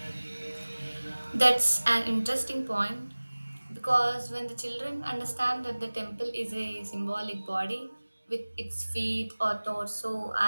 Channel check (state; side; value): inverted; both; correlation -1.00